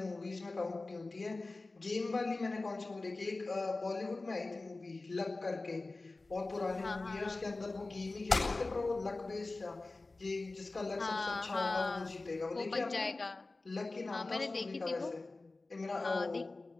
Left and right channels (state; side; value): quieter; right; 3.3 dB